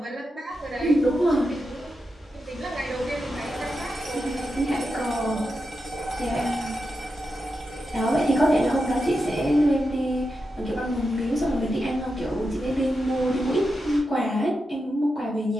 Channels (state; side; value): normal; both; correlation 0.88